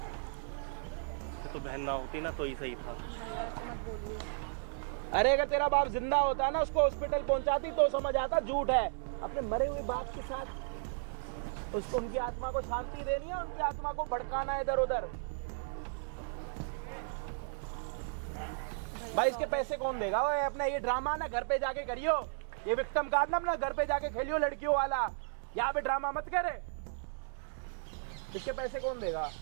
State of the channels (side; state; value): left; silent; digital silence